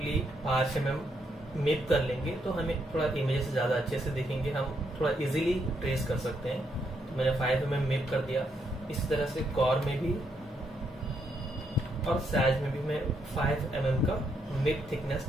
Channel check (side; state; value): both; normal; correlation 0.77